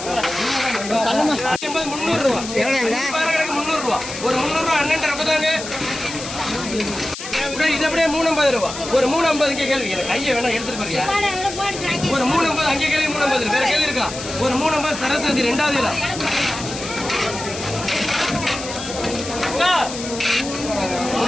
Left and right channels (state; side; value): noise; left; hiss, 10 dB below the sound